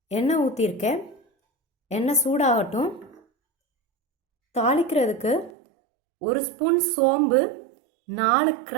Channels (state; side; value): drops out; left; at 5.5 s